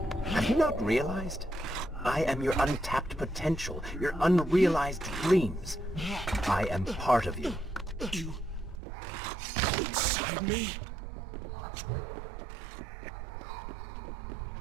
Have you not realized? I am your untapped potential, your unrealized dreams. I am part of you. You... inside me?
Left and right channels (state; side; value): drops out; left; at 8.8 s